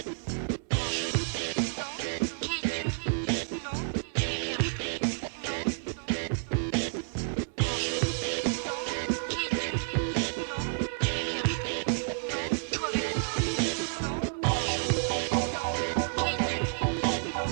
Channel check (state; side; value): silent; left; 58 dB below the other